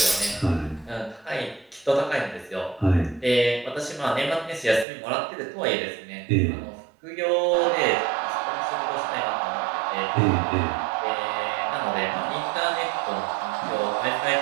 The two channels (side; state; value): left; drops out; at 4.9 s